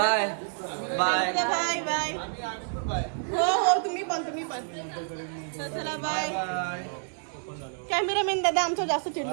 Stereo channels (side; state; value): left; silent; 59 dB below the other